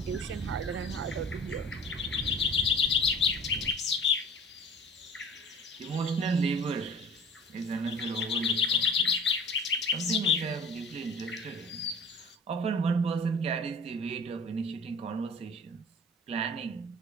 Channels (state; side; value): normal; both; correlation 0.43